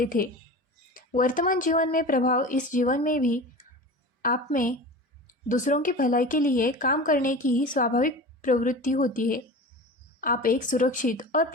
थे। वर्तमान जीवन में प्रभाव इस जीवन में भी आप में दूसरों की भलाई के लिए काम करने की स्वाभाविक प्रवृत्ति होती है। आप एक सुरक्षित और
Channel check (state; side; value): normal; both; correlation 0.33